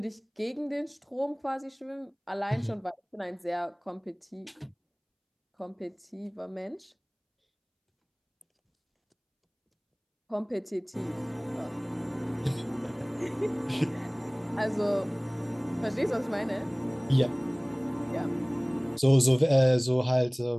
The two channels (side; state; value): both; identical; correlation 1.00